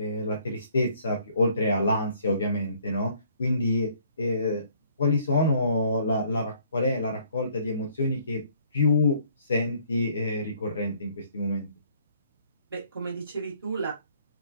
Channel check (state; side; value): inverted; both; correlation -0.61